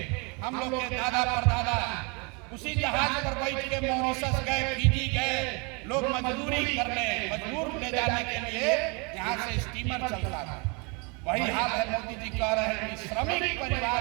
हम लोग के दादा परदादा उसी जहाज पर बैठ के मॉरिशस गए, फिजी गए, लोग मजदूरी करने, मजदूर ले जाने के लिए यहाँ से स्टीमर चलता था। वही हाल है। मोदी जी कह रहे हैं कि श्रमिक परिवार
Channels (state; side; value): quieter; left; 31.4 dB